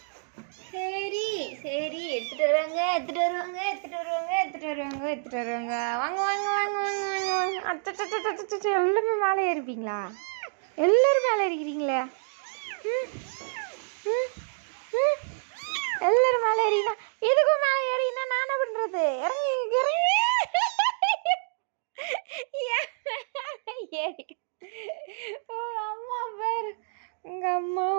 சரி, எடுத்துட்டு வருவாங்க. வாங்க. எல்லாருமே மேலே ஏறிப்பீங்களா? எல்லாரும் மேலே ஏறிக்கிறீங்களே. எல்லாரும் மேலே ஏறினா எதுக்கும் மேலே ஏறினா நான் என்ன பண்றது? இறங்கி ஏறி. அம்மா பேர் உங்க அம்மா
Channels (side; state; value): left; silent; digital silence